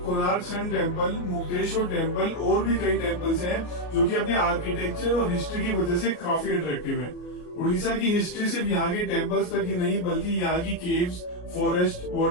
Konark sun temple, Mukteshwar temple और भी कई टेम्पल्स हैं जो कि अपने आर्किटेक्चर और हिस्ट्री की वजह से काफी अट्रैक्टिव है। उड़ीसा की हिस्ट्री सिर्फ यहाँ के टेम्पल्स तक ही नहीं बल्कि यहाँ की केव्स, फॉरेस्ट,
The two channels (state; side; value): late; right; 33 ms